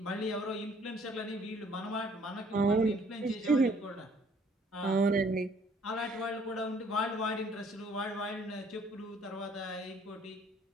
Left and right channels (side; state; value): both; normal; correlation 0.60